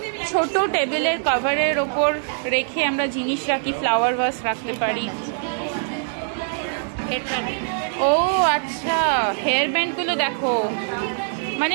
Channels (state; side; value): silent; left; digital silence